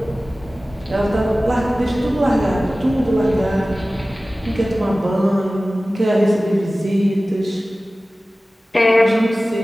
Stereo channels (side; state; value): both; normal; correlation 0.97